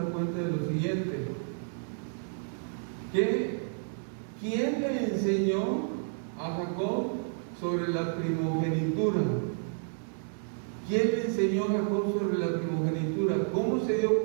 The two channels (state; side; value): silent; left; 58 dB below the other